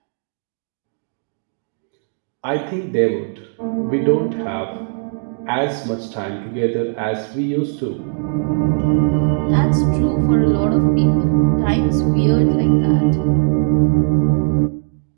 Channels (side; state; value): left; silent; digital silence